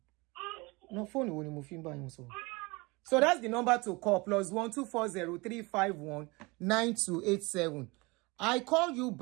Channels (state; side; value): quieter; left; 25.4 dB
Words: No phone wo ni mo fi ba yin so. So that's the number to call, +12403519287. 9287. I call you